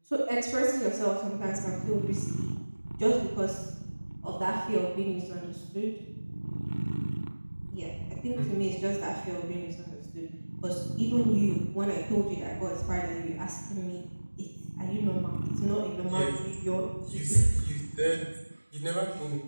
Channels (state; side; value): inverted; both; correlation -1.00